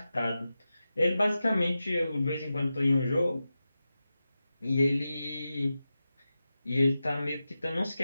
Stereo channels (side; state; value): both; inverted; correlation -0.92